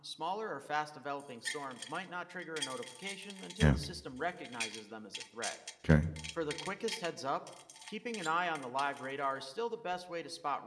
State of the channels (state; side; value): identical; both; correlation 1.00